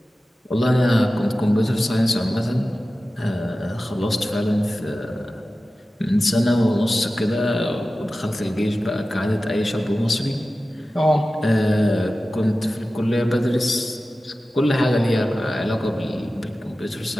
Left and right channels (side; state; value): both; normal; correlation 0.95